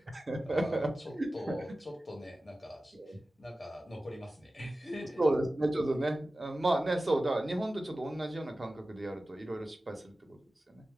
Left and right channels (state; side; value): normal; both; correlation 0.95